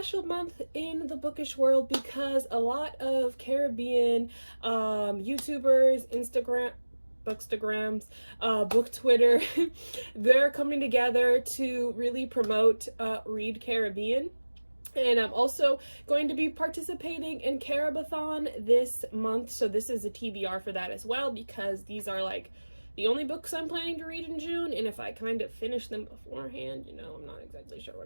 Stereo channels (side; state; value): both; inverted; correlation -1.00